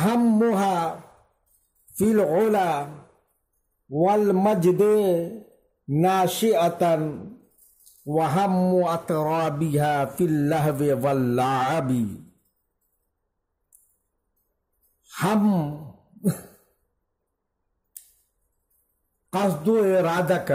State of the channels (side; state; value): both; identical; correlation 1.00